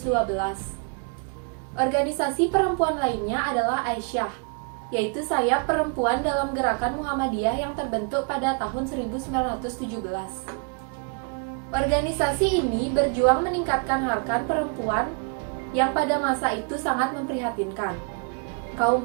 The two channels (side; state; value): left; quieter; 35.6 dB